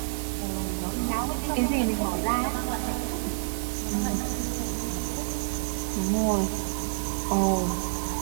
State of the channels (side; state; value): left; silent; digital silence